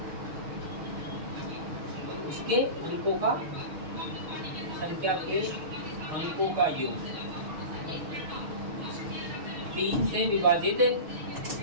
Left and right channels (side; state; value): left; late; 6.5 ms